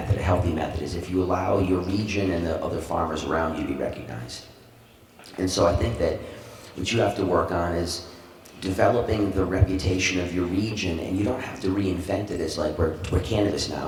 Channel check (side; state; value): both; identical; correlation 1.00